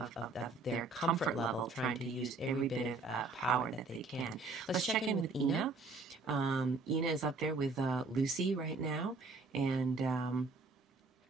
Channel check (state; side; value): quieter; left; 3.7 dB